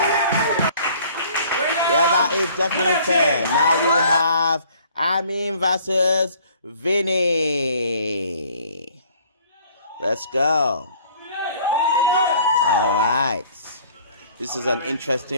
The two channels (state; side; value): inverted; both; correlation -0.55